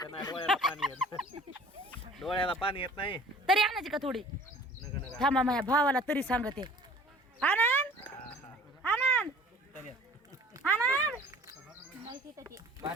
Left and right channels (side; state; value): both; normal; correlation 0.48